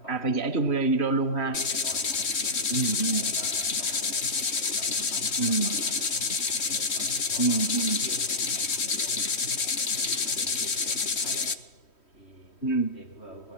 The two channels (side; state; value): right; late; 3.1 ms